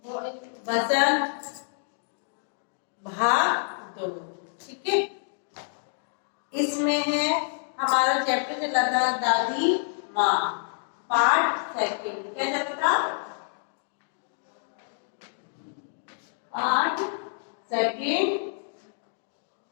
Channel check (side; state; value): right; silent; digital silence